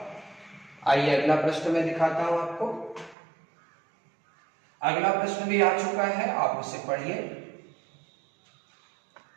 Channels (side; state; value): left; drops out; at 3.2 s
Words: आइए अगला प्रश्न मैं दिखाता हूं आपको। अगला प्रश्न भी आ चुका है, आप उसे पढ़िए